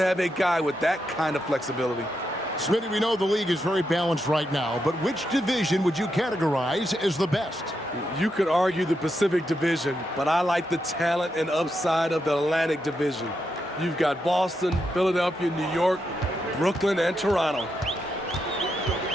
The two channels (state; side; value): normal; both; correlation 0.83